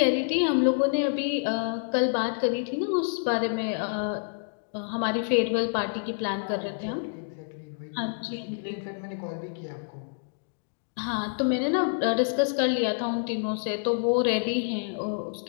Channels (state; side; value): silent; right; digital silence